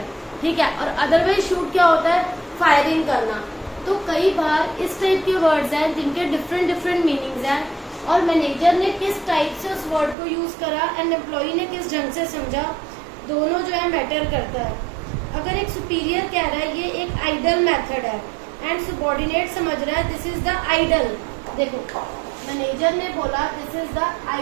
ठीक है, और अदरवाइज शूट क्या होता है? फायरिंग करना। तो कई बार इस टाइप के वर्ड्स हैं जिनके डिफरेंट मीनिंग्स हैं, और मैनेजर ने किस टाइप से उस वर्ड को यूज करा एंड एम्प्लॉई ने किस ढंग से समझा, दोनों जो है मैटर करता है। अगर एक सुपीरियर कह रहा है ये एक आइडल मेथड है एंड सबॉर्डिनेट समझ रहा है दिस इज द आइडल, देखो मैनेजर ने बोला this is the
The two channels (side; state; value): left; drops out; at 10.2 s